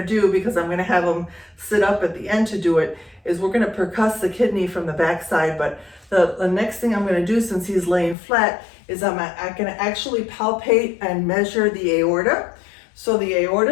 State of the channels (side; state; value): right; drops out; at 8.2 s